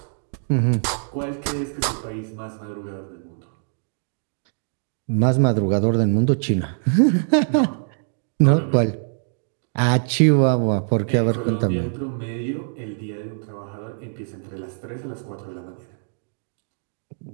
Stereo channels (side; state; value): left; silent; digital silence